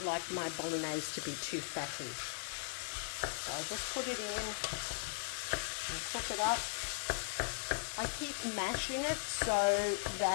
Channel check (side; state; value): right; silent; digital silence